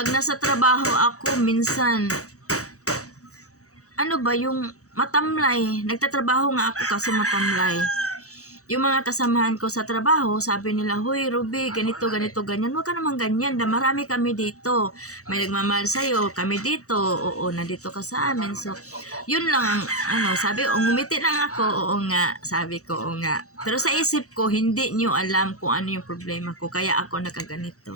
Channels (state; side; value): late; right; 0.65 ms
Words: nasa trabaho ako, minsan, yung matamlay. Nagtatrabaho nga ako kasi matamlay. Yung mga kasamahan ko sa trabaho, sabi nila, "Hoy, Ruby, ganito, ganyan." Huwag ka naman ganyan. Marami kami dito. May nagmamahal sa'yo. Kami dito. Oo, nandito ka sa amin. So, yun lang ang, sabi, ngumiti lang ako. Oo nga. Sabi ko, oo nga. Pero sa isip ko, hindi nyo alam kung ano yung problema ko. Kaya ako nagkaganito.